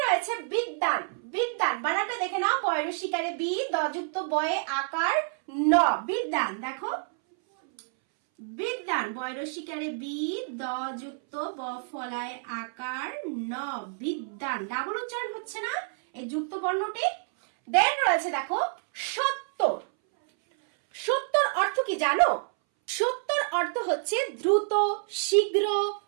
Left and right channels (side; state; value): left; silent; 59 dB below the other